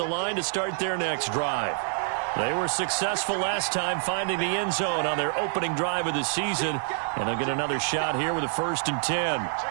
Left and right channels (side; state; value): left; silent; digital silence